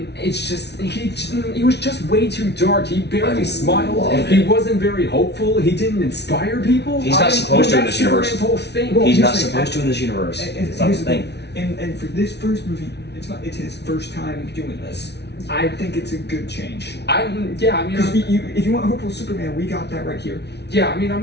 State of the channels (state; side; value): late; right; 0.50 ms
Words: just he was just way too dark. He barely I smiled. love He it. wasn't very hopeful. He didn't inspire people. He's not supposed to in this universe. Superman's whole thing. Well, He's here's not the thing, supposed to in this universe. It's not the thing. And for this first movie, it's his first time doing this. I think it's a good change. Because if you want hopeful Superman, we got that right here. I'm